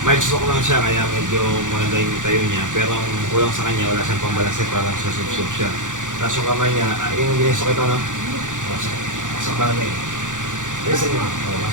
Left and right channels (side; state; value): left; late; 0.87 ms